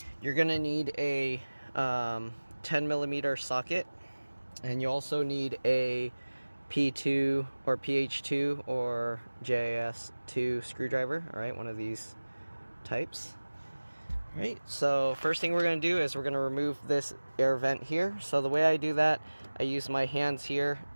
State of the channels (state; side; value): inverted; both; correlation -1.00